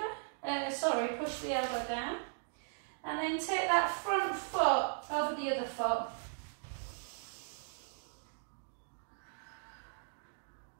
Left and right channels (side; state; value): left; silent; digital silence